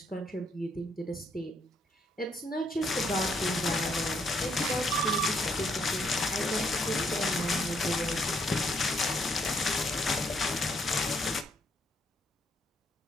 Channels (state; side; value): normal; both; correlation 0.72